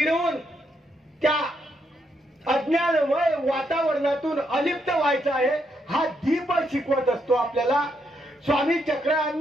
त्या अज्ञानमय वातावरणातून अलिप्त व्हायचं आहे. हा दीप शिकवत असतो आपल्याला. स्वामी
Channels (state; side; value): normal; both; correlation 0.77